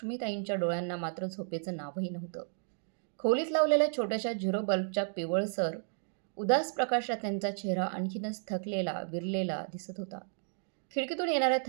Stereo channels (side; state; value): left; silent; digital silence